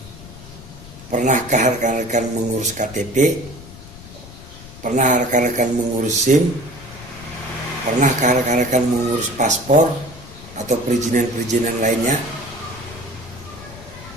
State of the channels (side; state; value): left; noise; rumble, 17 dB below the sound